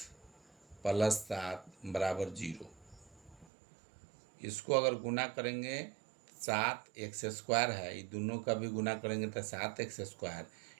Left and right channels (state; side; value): drops out; left; at 3.5 s